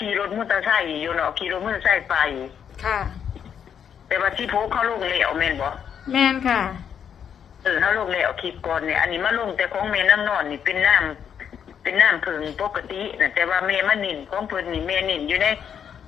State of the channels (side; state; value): right; quieter; 8.1 dB